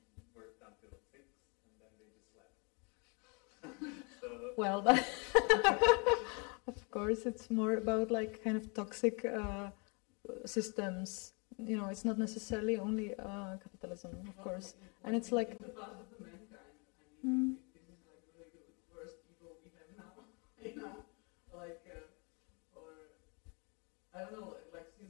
worked until 6 and then they just slept. So, Well, of course, it's more about like kind of toxic systems. It's not necessarily only capitalism, of course, and it's like. the past of the mankind. I mean, this is like really the worst evil we have now. Like, or I don't know, like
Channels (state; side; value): quieter; right; 33.1 dB